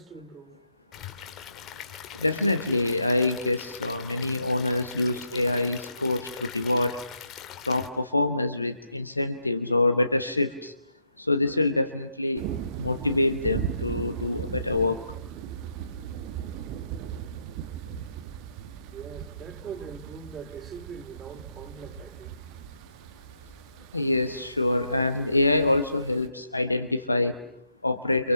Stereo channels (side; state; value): both; inverted; correlation -0.79